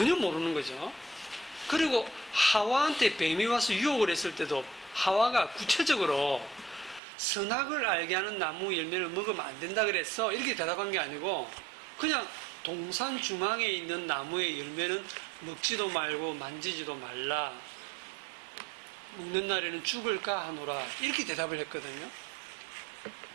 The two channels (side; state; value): left; drops out; at 7.0 s